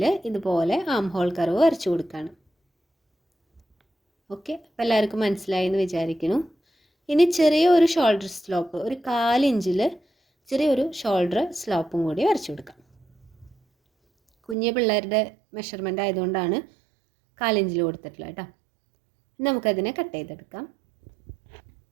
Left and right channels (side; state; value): left; drops out; at 14.6 s